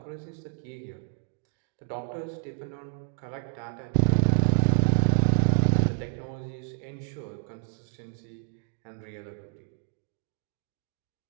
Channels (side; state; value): left; silent; digital silence